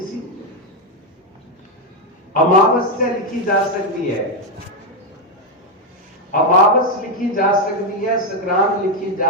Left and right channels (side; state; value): both; normal; correlation 0.04